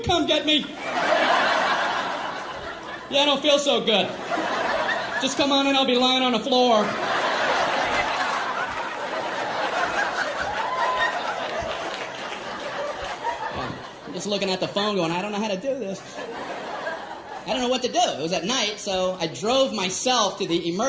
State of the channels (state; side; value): identical; both; correlation 1.00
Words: come get me? Yeah, I don't feel so good. Just come on in, I'll be lying on the floor. I'm just looking at the phone going, I don't know how to do this. I don't know what to do. It was at night, so I drove myself to the